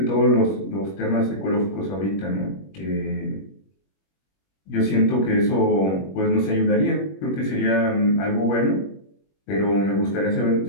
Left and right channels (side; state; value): right; late; 21 ms